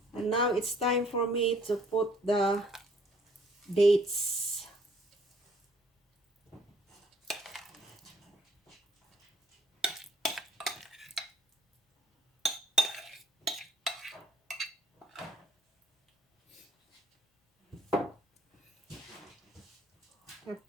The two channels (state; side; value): normal; both; correlation 0.61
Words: And now it's time for me to put the dates. Have